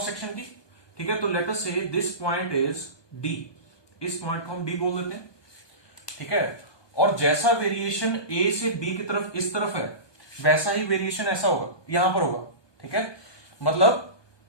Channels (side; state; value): right; late; 1.2 ms